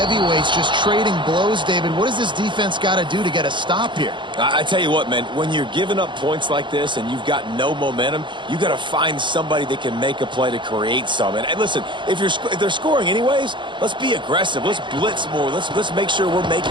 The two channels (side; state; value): left; late; 0.23 ms